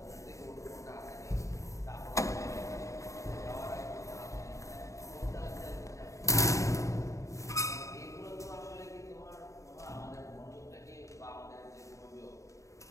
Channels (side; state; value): right; late; 0.15 ms